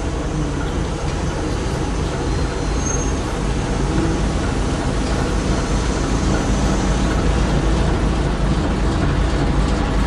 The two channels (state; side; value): identical; both; correlation 1.00